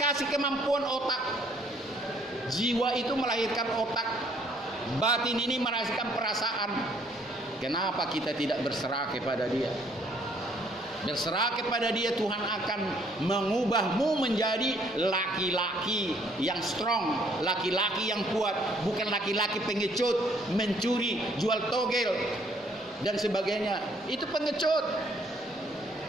kemampuan otak. Jiwa itu melahirkan otak, batin ini melahirkan perasaan. Kenapa kita tidak berserah kepada Dia? Berserah kepada Dia, Tuhan akan mengubahmu menjadi laki-laki yang strong, laki-laki yang kuat, bukan laki-laki pengecut, mencuri, jual togel dan sebagainya. Itu pengecut.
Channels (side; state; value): both; normal; correlation 0.64